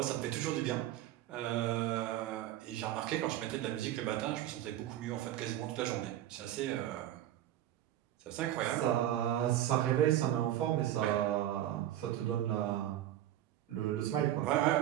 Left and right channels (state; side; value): quieter; left; 12.8 dB